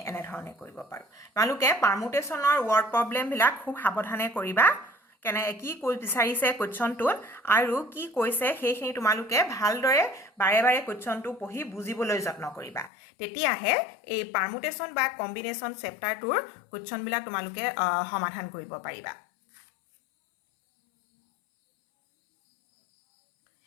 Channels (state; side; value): drops out; right; at 12.9 s